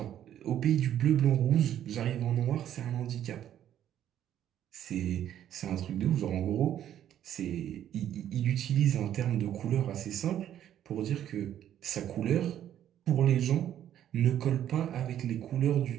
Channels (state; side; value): quieter; left; 10.9 dB